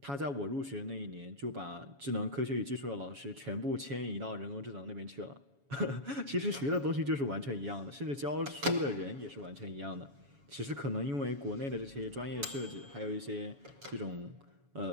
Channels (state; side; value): late; left; 7.1 ms